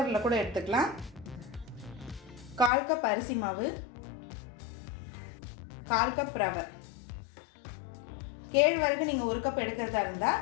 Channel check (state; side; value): drops out; right; at 2.7 s